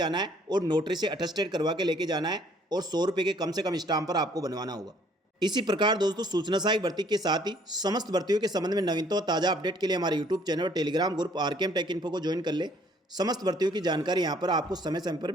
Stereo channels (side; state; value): both; normal; correlation 0.61